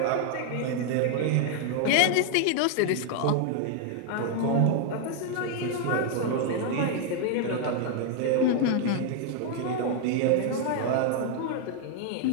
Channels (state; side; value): different; both; correlation 0.00